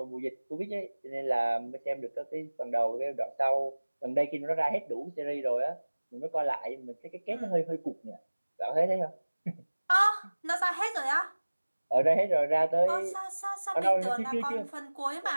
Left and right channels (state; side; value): inverted; both; correlation -1.00